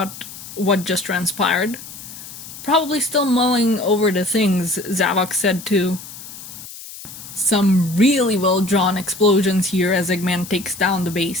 what just transpired. Probably still mulling over the things Zavok said too. Some really well drawn explosions here as Eggman takes down the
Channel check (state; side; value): noise; left; hiss, 14 dB below the sound